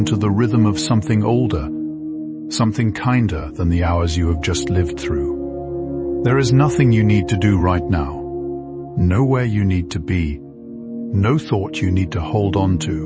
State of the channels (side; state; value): both; identical; correlation 1.00